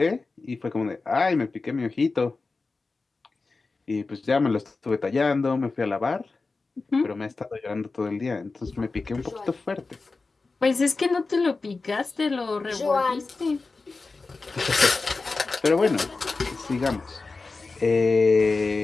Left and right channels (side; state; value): right; quieter; 3.9 dB